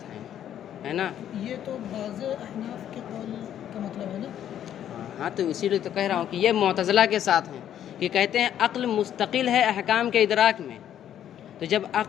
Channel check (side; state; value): right; quieter; 10.5 dB